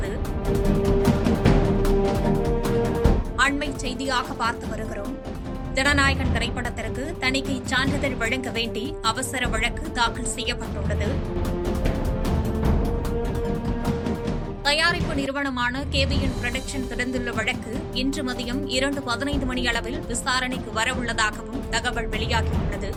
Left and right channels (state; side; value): identical; both; correlation 1.00